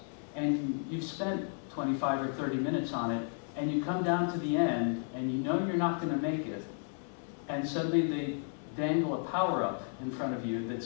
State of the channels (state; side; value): silent; right; 56 dB below the other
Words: and you've spent 25 or 30 minutes on it, and you come down to the end, and you know you're not going to make it, and suddenly they dangle a power-up in front of you that